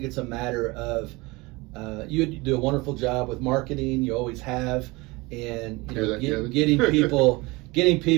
it's a matter of you do a wonderful job with marketing. You always have, and getting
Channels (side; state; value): left; quieter; 23.8 dB